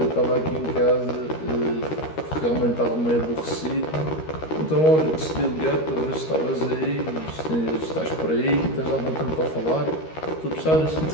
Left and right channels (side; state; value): right; late; 13 ms